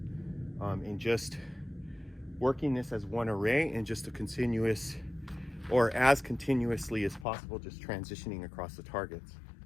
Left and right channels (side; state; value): right; drops out; at 7.2 s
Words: and just working this as one array and just a continuous, or as continuously as possible, just transitioning across the targets.